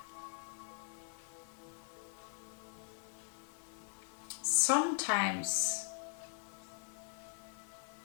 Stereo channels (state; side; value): silent; right; 51 dB below the other